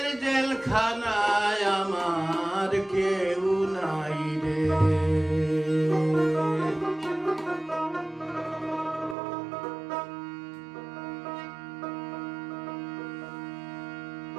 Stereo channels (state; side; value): drops out; left; at 9.2 s